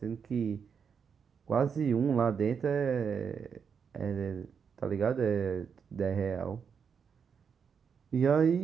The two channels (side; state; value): left; quieter; 6.6 dB